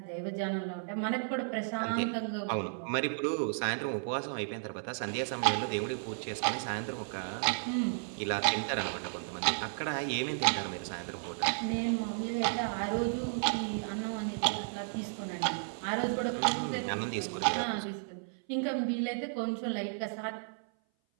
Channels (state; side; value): silent; left; 55 dB below the other